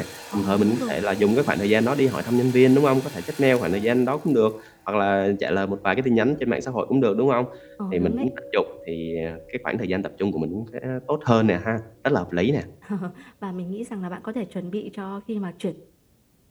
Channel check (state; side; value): identical; both; correlation 1.00